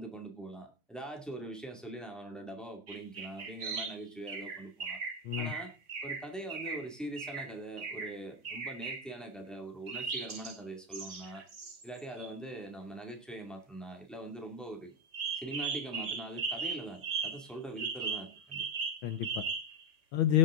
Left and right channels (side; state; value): both; normal; correlation 0.11